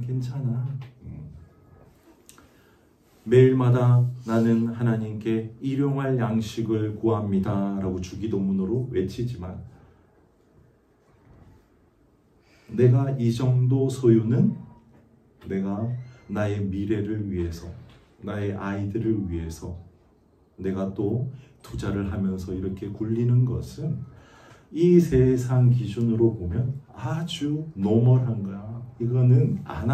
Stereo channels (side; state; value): both; identical; correlation 1.00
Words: 괜찮아. 매일마다 나는 하나님께 일용할 양식을 구합니다 라고 주기도문으로 외치지만, 내가 이 정도 소유는 내가 나의 미래를 위해서, 나의 아이들을 위해서 내가 또 투자를 하면서 이렇게 굴리는 것은 이 세상 기준으로 보면 아주 노멀한 거야. 이거는 안